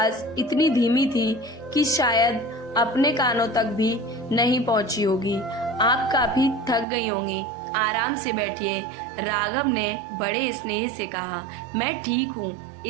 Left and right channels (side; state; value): left; drops out; at 6.9 s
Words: इतनी धीमी थी कि शायद अपने कानों तक भी नहीं पहुंची होगी। आप काफी थक गई होंगी, आराम से बैठिए, राघव ने बड़े स्नेह से कहा। मैं ठीक हूँ।